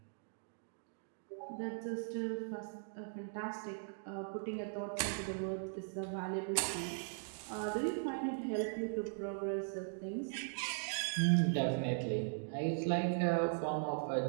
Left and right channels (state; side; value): silent; left; digital silence